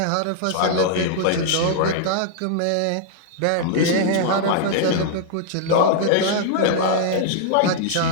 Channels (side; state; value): both; different; correlation -0.01